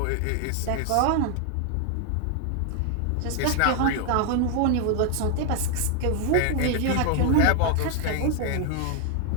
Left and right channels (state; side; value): different; both; correlation 0.00